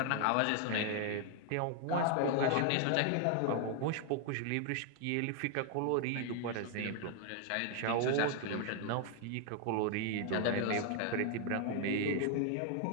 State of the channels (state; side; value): different; both; correlation 0.00